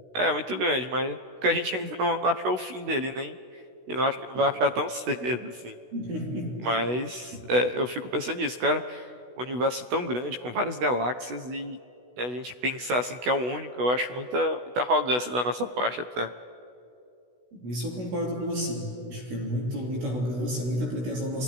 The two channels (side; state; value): left; late; 16 ms